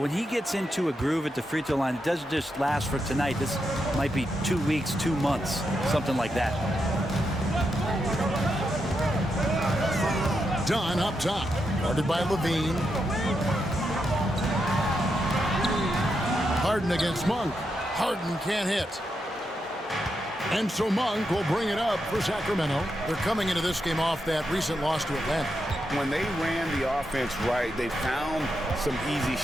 when he gets into a groove at the free throw line, it doesn't just last for tonight. This might be 2 weeks, 2 months, something like that. Dunn up top, guarded by Levine. Harden against Monk. Harden can't hit. And so Monk will bring it up for Sacramento. They're coming into this game off that recent loss to Atlanta. When they ran the offense right, they found some easy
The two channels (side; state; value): both; normal; correlation 0.84